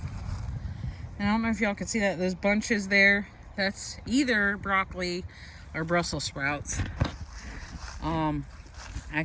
And I don't know if y'all can see that, those bunches there, that's either broccoli or Brussels sprouts.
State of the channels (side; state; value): both; identical; correlation 1.00